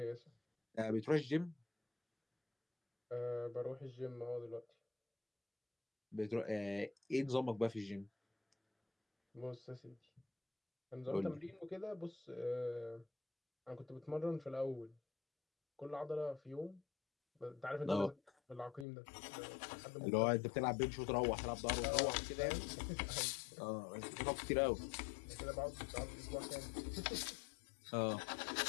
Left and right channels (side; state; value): right; drops out; at 18.9 s